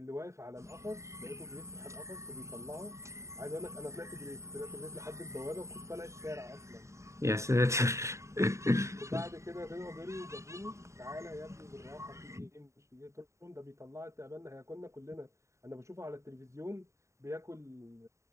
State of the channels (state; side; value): late; left; 0.14 ms